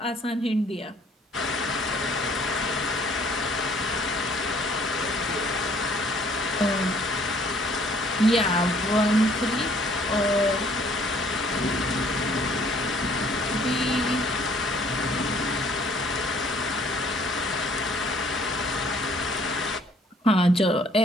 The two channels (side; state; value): both; normal; correlation 0.60